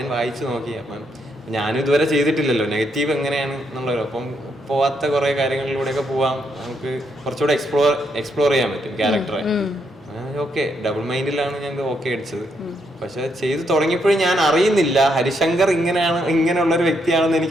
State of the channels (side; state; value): both; normal; correlation 0.77